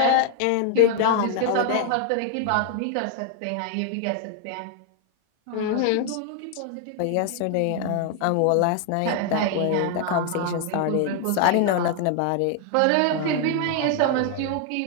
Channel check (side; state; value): both; different; correlation 0.00